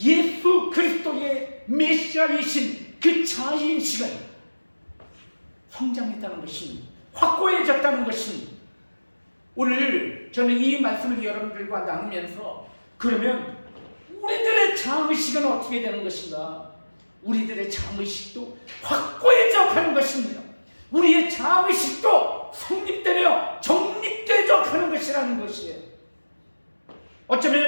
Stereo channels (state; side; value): inverted; both; correlation -1.00